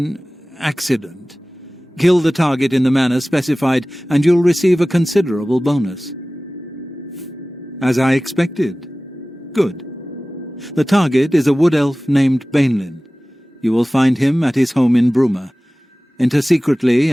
accident. Kill the target in the manner specified, and you'll receive a considerable bonus. As I expected. Good. The target is a wood elf named Bainlin. You will find him at his home in Bruma. Enter secretly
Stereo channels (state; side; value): normal; both; correlation 0.97